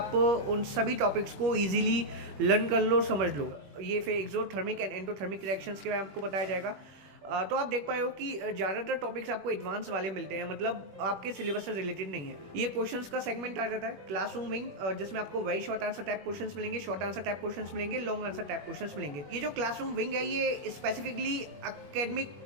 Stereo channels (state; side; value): late; left; 21 ms